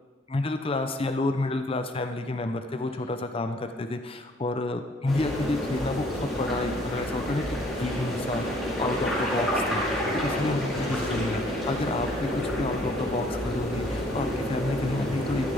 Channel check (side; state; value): both; normal; correlation 0.60